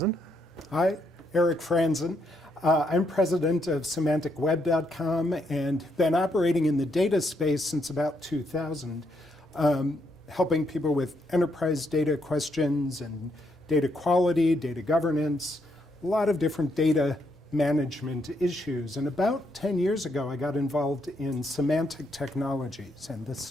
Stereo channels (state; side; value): normal; both; correlation 0.76